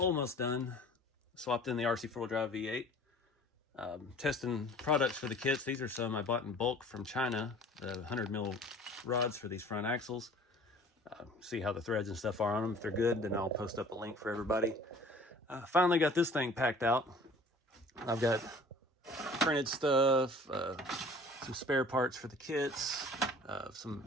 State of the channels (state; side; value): normal; both; correlation 0.48